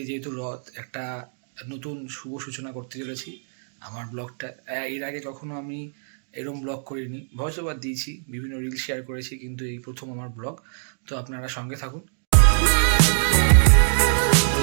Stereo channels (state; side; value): silent; left; digital silence